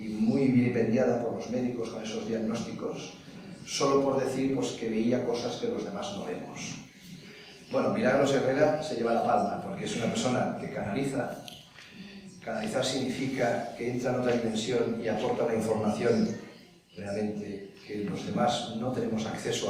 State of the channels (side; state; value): both; identical; correlation 1.00